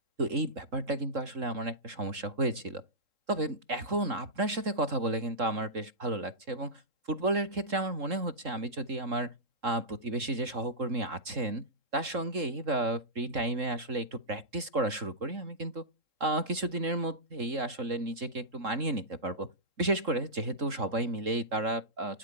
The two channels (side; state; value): left; late; 3.7 ms